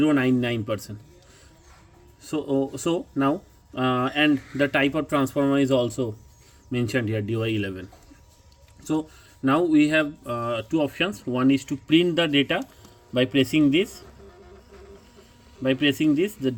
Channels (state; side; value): identical; both; correlation 1.00